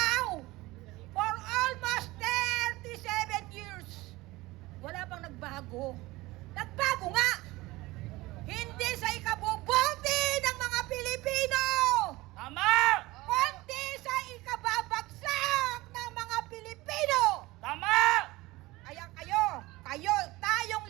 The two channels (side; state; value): left; quieter; 20.1 dB